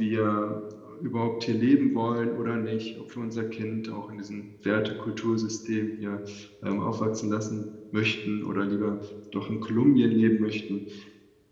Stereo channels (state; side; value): identical; both; correlation 1.00